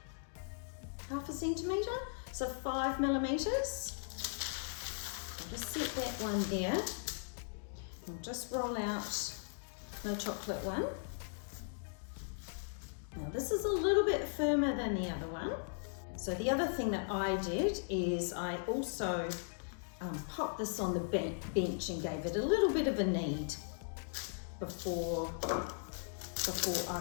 1/2 centimetre, so 5 millimetres. I'll just set that one there. I'll just roll out the chocolate one. Now this is a little bit firmer than the other one. So the other thing that I did is I also popped this on the bench and gave it a little bit of a knead before I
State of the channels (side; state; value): right; silent; digital silence